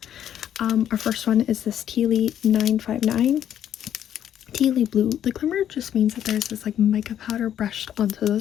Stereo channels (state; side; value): quieter; right; 10.2 dB